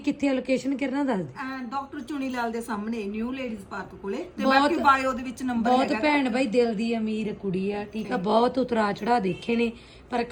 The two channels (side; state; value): both; identical; correlation 1.00